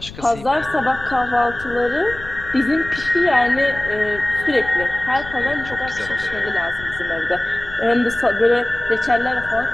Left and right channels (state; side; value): noise; left; rumble, 15 dB below the sound